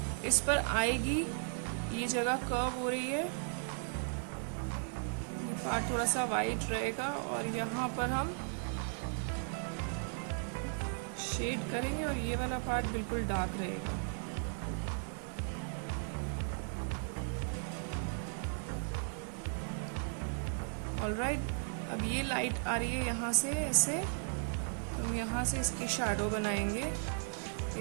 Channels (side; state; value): left; silent; 54 dB below the other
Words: इस पर आएगी, ये जगह कर्व हो रही है, ये पार्ट थोड़ा सा वाइट रहेगा और यहाँ पर हम शेड करेंगे और ये वाला पार्ट बिल्कुल डार्क रहेगा। ऑलराइट, अब ये लाइट आ रही है यहाँ से ऐसे, हम यहाँ से इसकी शैडो बनाएंगे,